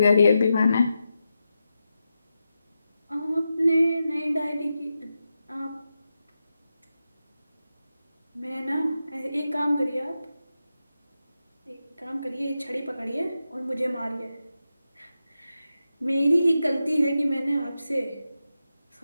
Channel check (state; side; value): inverted; both; correlation -0.89